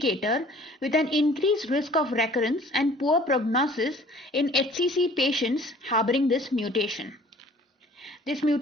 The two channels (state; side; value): normal; both; correlation 0.52